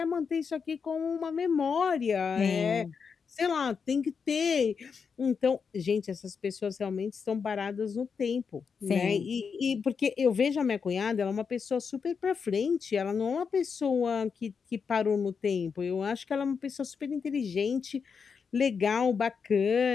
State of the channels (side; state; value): right; quieter; 5.9 dB